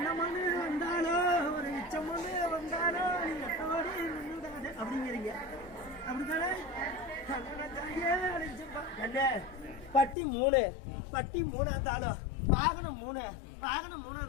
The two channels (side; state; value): right; drops out; at 10.2 s